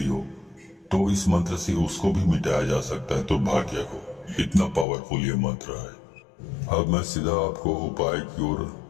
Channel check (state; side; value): drops out; right; at 4.9 s